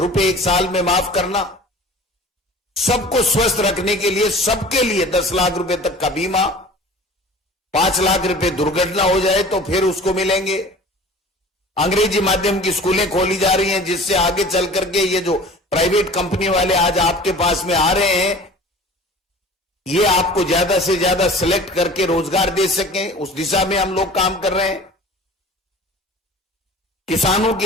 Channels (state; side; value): normal; both; correlation 0.43